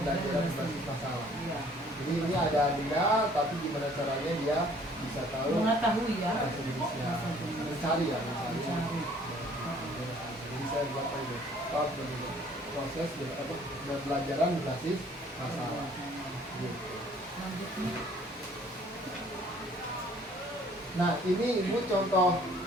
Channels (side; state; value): both; normal; correlation 0.57